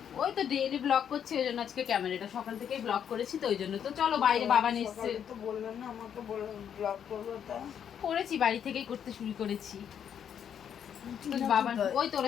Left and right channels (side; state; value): right; quieter; 8.6 dB